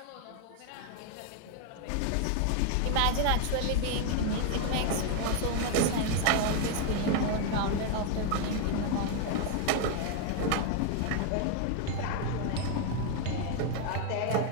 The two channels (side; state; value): both; different; correlation 0.01